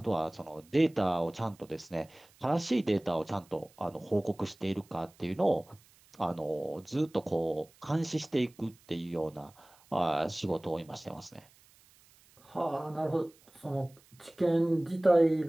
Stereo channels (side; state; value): right; noise; hiss, 29 dB below the sound